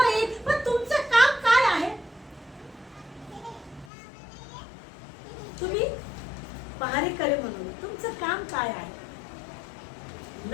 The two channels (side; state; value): right; drops out; at 3.9 s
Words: येईल, पण तुमचं काम काय आहे? तुम्ही पहारेकरी म्हणून तुमचं काम काय आहे?